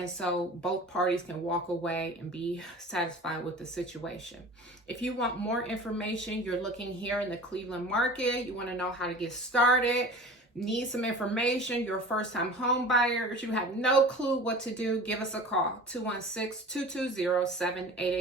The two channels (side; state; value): both; normal; correlation 0.39